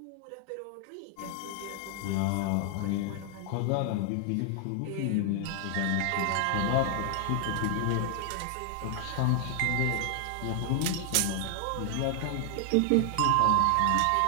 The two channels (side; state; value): both; different; correlation 0.00